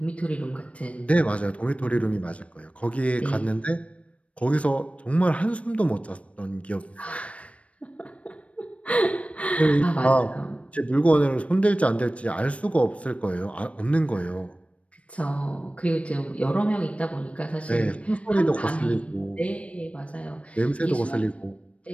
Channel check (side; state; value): right; late; 0.063 ms